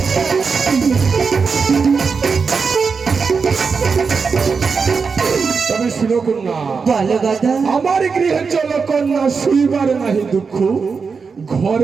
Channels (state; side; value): quieter; left; 5.2 dB